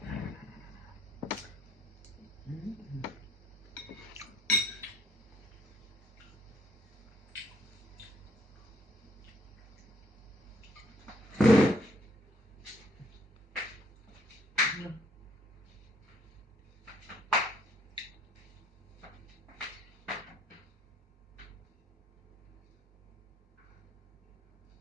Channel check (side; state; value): both; normal; correlation 0.65